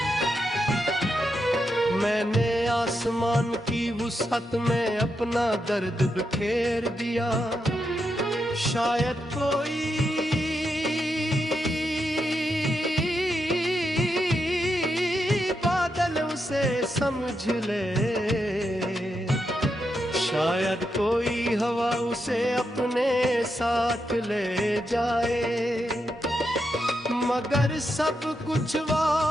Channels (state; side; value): normal; both; correlation 0.84